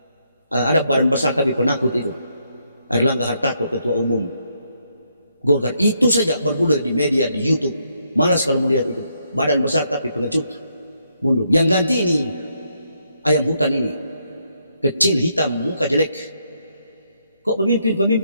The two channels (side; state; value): both; inverted; correlation -0.76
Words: Ada badan besar tapi penakut itu, Erlangga Hartarto, ketua umum Golkar. Itu saja bergulir di media, di YouTube. Malas kalau melihat itu. Badan besar tapi pengecut, mundur. Yang ganti ini ayam hutan ini, kecil, hitam, muka jelek. Kok